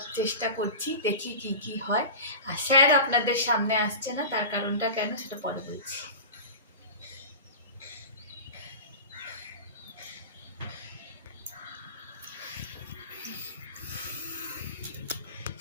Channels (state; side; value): inverted; both; correlation -0.31